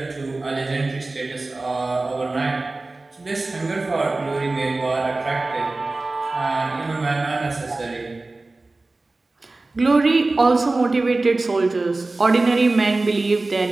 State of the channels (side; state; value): left; quieter; 3.2 dB